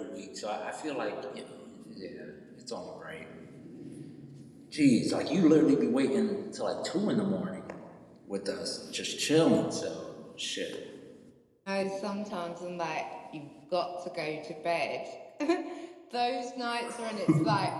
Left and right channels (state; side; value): identical; both; correlation 1.00